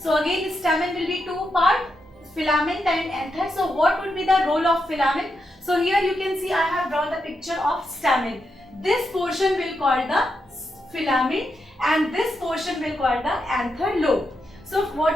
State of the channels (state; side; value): normal; both; correlation 0.84